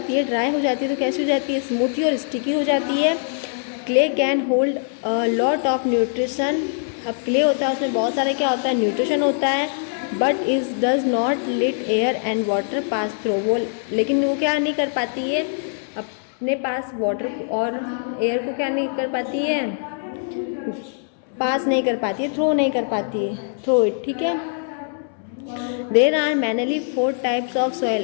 है, ड्राई हो जाती है, तो कैसी हो जाती है, स्मूथी और स्टिकी हो जाती है। Clay can hold lot of nutrition. अब क्ले होता है उसमें बहुत सारे क्या होता है, न्यूट्रिशन होता है। But is does not let air and water pass through. वो लेकिन वो क्या नहीं कर पाती है, अपने पास वाटर और एयर को क्या नहीं कर पाती है, पास नहीं कर पाती है, थ्रो नहीं कर पाती है, थ्रो इट। ठीक है, there are mainly 4 types of soil.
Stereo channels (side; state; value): right; silent; 64 dB below the other